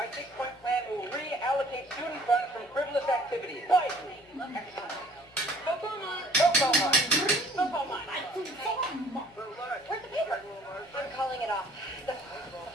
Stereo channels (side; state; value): left; noise; hum, 27 dB below the sound